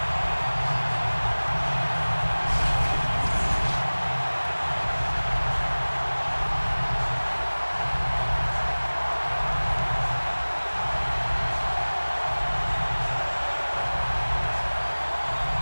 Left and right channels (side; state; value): both; inverted; correlation -1.00